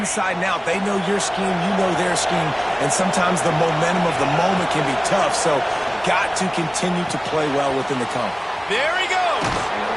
and out. They know your scheme, you know their scheme, and sometimes the momentum of the moment can be tough, so got to continue to play well within the conference. There he goes!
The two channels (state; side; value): identical; both; correlation 1.00